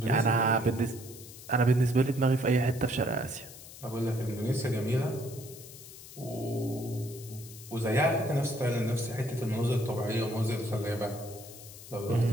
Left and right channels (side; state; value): left; noise; hiss, 16 dB below the sound